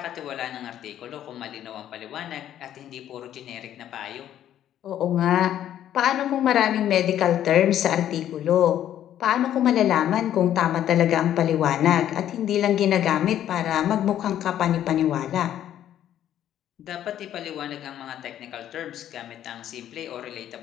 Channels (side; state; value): right; quieter; 11.2 dB